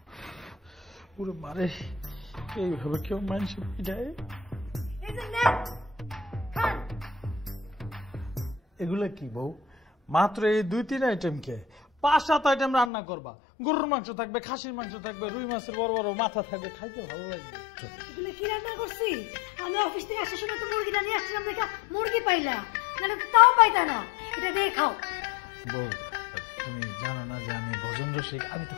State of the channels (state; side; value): drops out; right; at 12.9 s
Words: পুরো মারে এইভাবে কেউ মানুষ পিঠায়? এই যে নেন, খান। এগুলা কি বউ? মাত্র এই 2-3 আইটেম কে 5-7 আইটেম রান্না করবা। গরুর মাংস থাকবে, খাসির মাংস থাকবে, রুই মাছের বড় বড় মাথা থাকবে, খাইতে ভালো লাগবে। এগুলো কি রান্না করছি? আমি অফিস থেকে আসার সময় তো মুরগিটা নিয়ে আসছিলাম, দেখা মুরগি পাইলা, নাহলে তো তাও পাইতা না। এটা দিয়ে খাও। বউ, তুমি জানো না যে আমি ভোজন রসিক, আমি তো